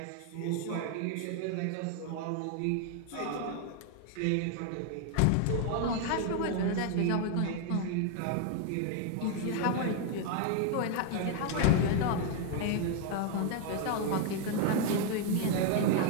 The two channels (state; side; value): different; both; correlation 0.00